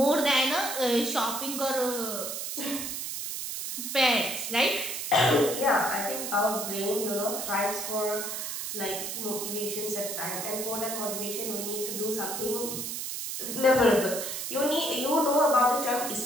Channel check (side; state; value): right; noise; hiss, 4 dB below the sound